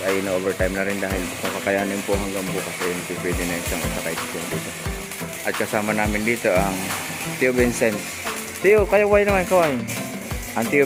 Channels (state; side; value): identical; both; correlation 1.00